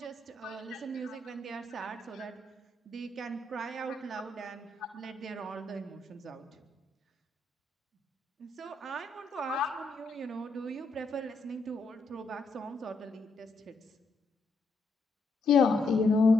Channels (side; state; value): right; quieter; 3.1 dB